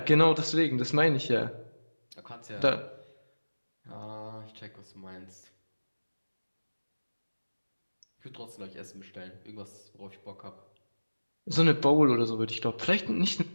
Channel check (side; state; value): both; inverted; correlation -1.00